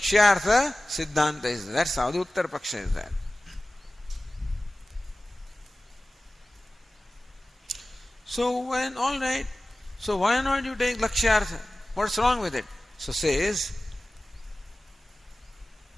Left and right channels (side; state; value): both; normal; correlation 0.97